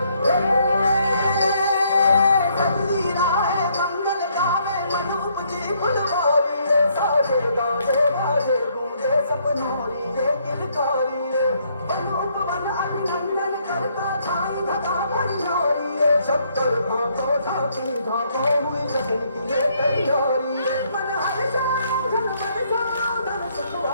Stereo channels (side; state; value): both; inverted; correlation -0.70